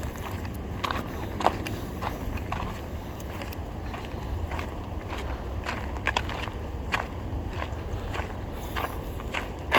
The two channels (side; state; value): both; identical; correlation 1.00